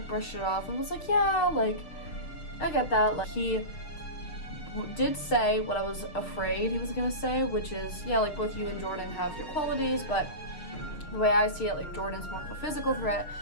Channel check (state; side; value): late; right; 6.5 ms